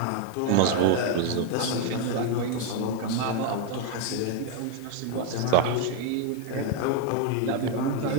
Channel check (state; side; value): different; both; correlation 0.01